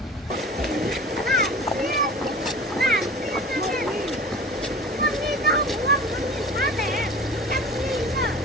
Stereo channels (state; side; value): normal; both; correlation 0.38